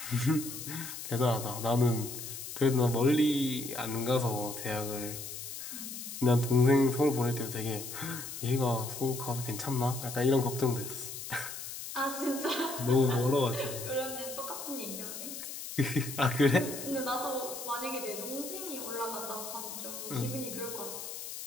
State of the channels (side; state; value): left; noise; hiss, 8 dB below the sound